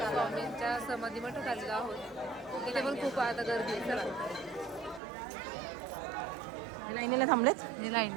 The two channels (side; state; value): left; drops out; at 5.0 s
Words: स्वामींच्या समाधी मठात आलेलो आहोत. इथे पण खूप आता गर्दी आहे. चला लाईनीला थांबलेत. हे लाईन